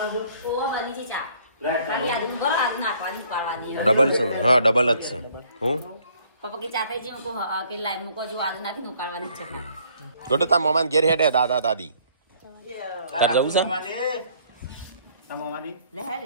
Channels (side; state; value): both; inverted; correlation -0.61